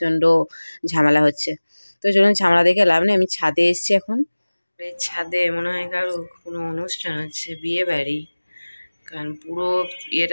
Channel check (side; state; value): both; inverted; correlation -1.00